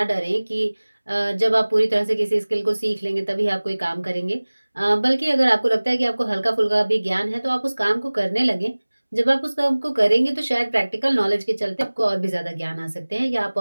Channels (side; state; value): both; inverted; correlation -1.00